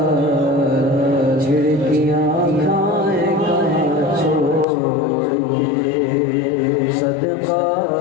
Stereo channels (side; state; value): right; drops out; at 4.7 s